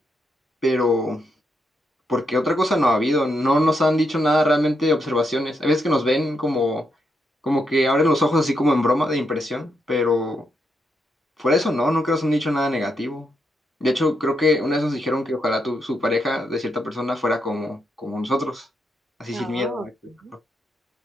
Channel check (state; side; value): normal; both; correlation 0.81